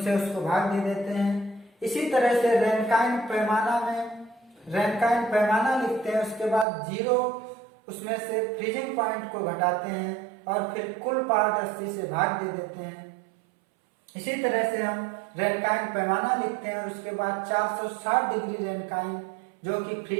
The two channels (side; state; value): left; drops out; at 6.7 s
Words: उसको भाग दे देते हैं। इसी तरह से रैनकाइन पैमाना लिखते हैं, उसके बाद 0 उसमें से फ्रीजिंग पॉइंट को घटाते हैं और फिर कुल पार्ट 80 से भाग दे देते हैं। इसी तरह से हम रैनकाइन पैमाना लिखते हैं और उसके बाद 460 डिग्री रैनकाइन जो कि